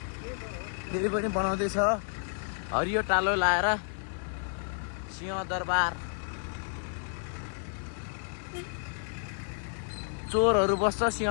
फेरि पनि बनाउँदैछ हरियो टालो लाएर सिंहदरबार चोरहरू बस्छ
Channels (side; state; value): right; silent; 57 dB below the other